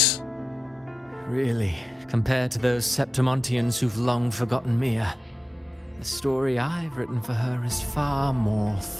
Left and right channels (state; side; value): normal; both; correlation 0.93